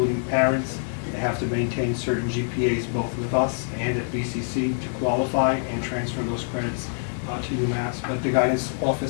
parents. They have to maintain certain GPAs both with us and at BCC to qualify and transfer those credits to UMass. But the guidance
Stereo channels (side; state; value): right; silent; 62 dB below the other